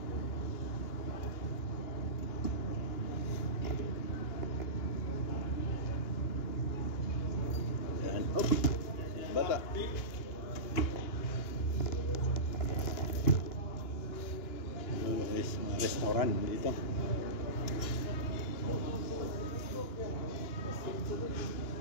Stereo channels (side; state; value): right; late; 2.9 ms